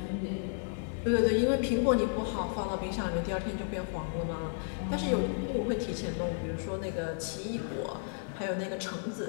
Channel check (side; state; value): right; silent; digital silence